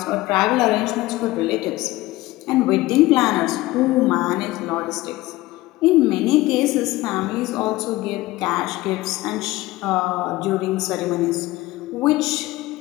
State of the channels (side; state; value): right; quieter; 18.5 dB